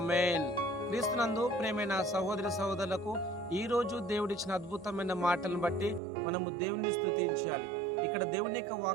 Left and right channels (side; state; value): left; drops out; at 6.0 s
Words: క్రీస్తునందు ప్రేమైన సహోదరి సహోదరులకు ఈ రోజు దేవుడిచ్చిన అద్భుతమైన మాటలను బట్టి మనము దేవుని స్తుతించాలి. ఇక్కడ దేవుని యొక్క